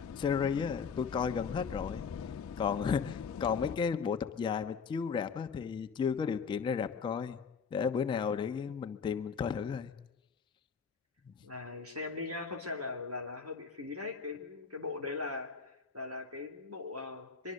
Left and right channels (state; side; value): quieter; right; 5.9 dB